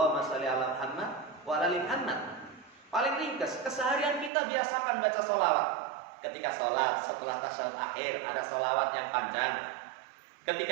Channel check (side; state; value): left; drops out; at 4.3 s